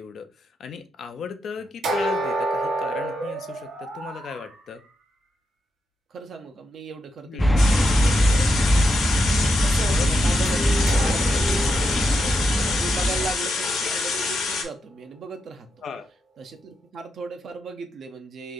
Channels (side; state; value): both; normal; correlation 0.84